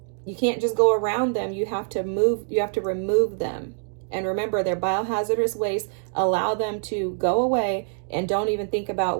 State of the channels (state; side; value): silent; left; digital silence